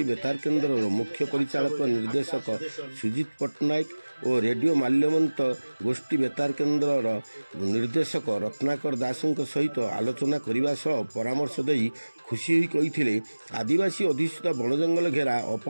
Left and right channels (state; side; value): inverted; both; correlation -1.00